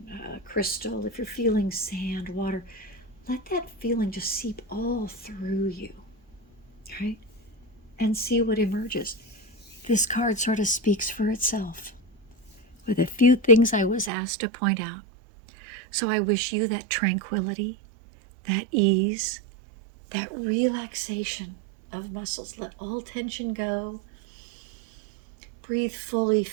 a crystal, if you're feeling sand, water, let that feeling just seep all through you, right? And see what emerges. This card sort of speaks for itself with a few things I was asked to point out. So I wish you that tranquility, that ease, that relaxation of muscles. Let all tension go. Breathe fully,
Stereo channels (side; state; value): left; drops out; at 14.1 s